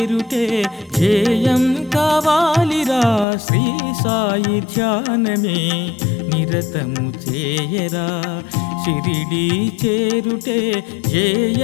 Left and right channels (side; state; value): right; drops out; at 3.2 s